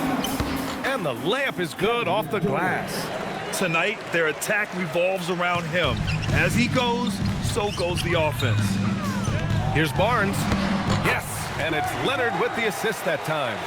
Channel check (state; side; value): identical; both; correlation 1.00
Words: And the layup is good off the glass. Tonight, their attack revolves around him. As he goes, so goes the offense. Here's Barnes. Yes, and it's Leonard with the assist that time.